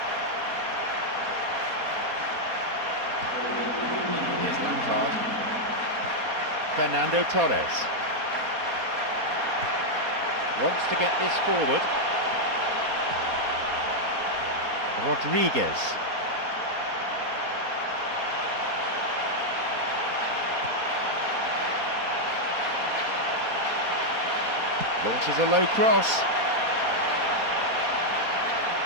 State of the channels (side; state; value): left; late; 4.2 ms